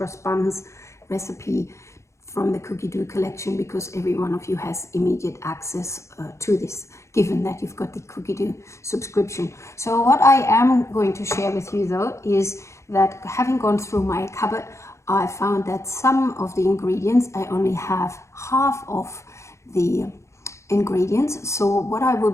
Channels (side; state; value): right; late; 0.14 ms